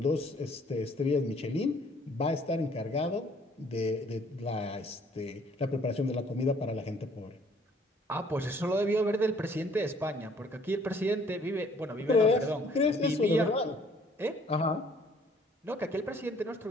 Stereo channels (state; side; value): normal; both; correlation 0.59